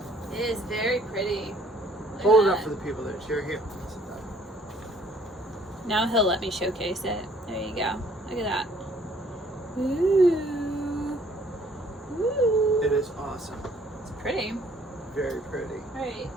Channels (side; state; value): both; normal; correlation 0.60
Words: It is very pretty. Hold it up for the people that cheer here. Now he'll let me showcase it. There you go. Look at that. Ooh. Ooh. It is awesome. It's pretty. Very pretty. Right.